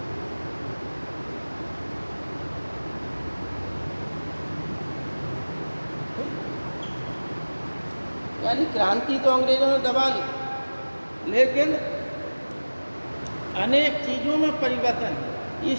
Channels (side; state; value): both; inverted; correlation -1.00